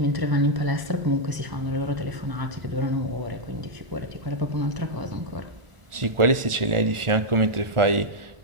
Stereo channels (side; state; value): left; late; 1.4 ms